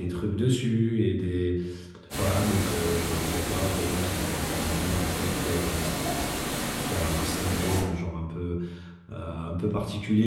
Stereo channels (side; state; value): both; identical; correlation 1.00